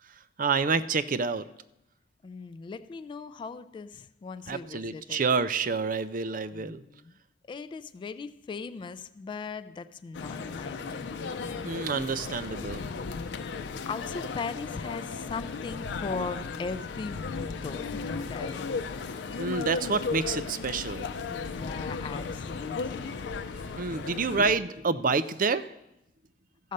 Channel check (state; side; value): normal; both; correlation 0.08